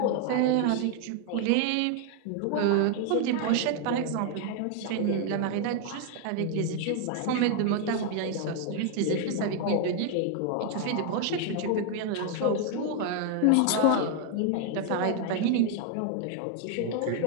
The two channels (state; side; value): different; both; correlation 0.00